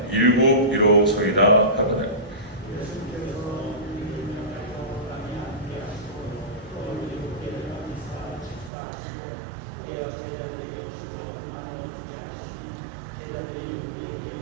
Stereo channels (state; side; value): drops out; left; at 8.7 s